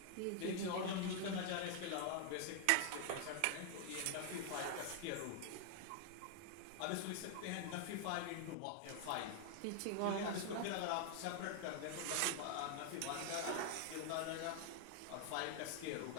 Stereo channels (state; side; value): different; both; correlation 0.00